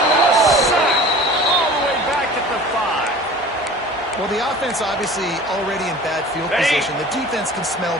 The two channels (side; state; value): both; normal; correlation 0.42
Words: a sack all the way back at the 5. Well, the offense obviously already in bad field position. The defense can smell